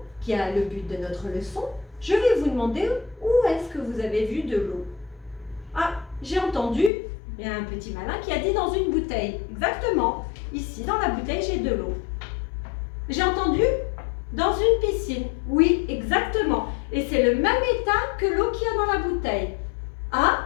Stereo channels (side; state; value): right; drops out; at 6.9 s